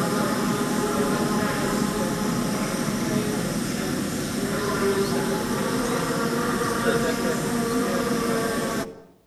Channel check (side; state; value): both; identical; correlation 1.00